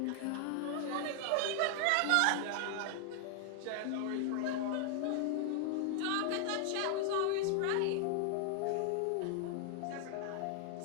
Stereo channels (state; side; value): different; both; correlation 0.00